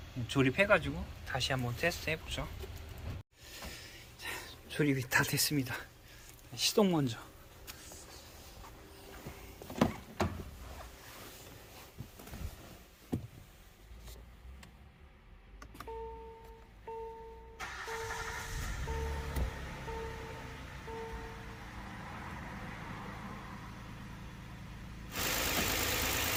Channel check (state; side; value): identical; both; correlation 1.00